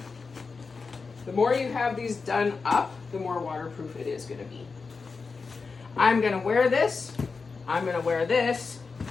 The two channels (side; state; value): right; quieter; 4.6 dB